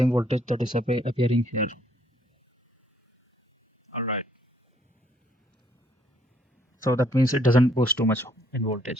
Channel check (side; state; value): both; normal; correlation 0.67